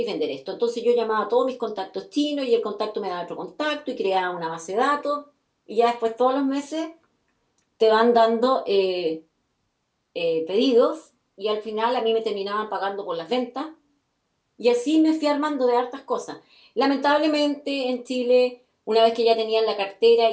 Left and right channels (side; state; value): both; identical; correlation 1.00